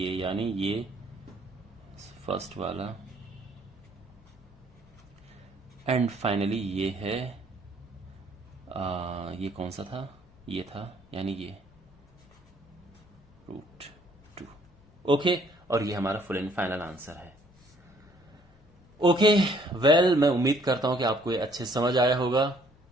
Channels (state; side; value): noise; left; hum, 29 dB below the sound